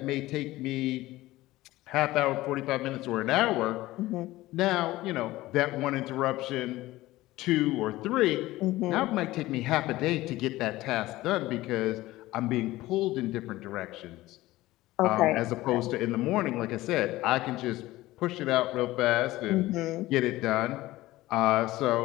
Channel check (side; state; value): right; quieter; 17.5 dB